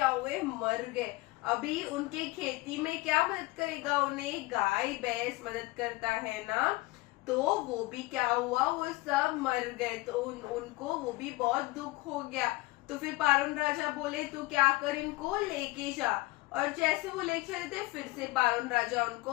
हुए, मर गए। अभी उनके खेती में क्या मदद करेगा उन्हें, गाय भैंस मदद करता है ना, तो वो भी क्या हुआ, वो सब मर गए। तो उनको वो भी बहुत दुख हो गया। तो फिर पारून राजा बोले, तू क्या कर, इनको लेके जा। और जैसे वो लेके चले थे, फिर से पारून राजा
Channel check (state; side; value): quieter; right; 21.3 dB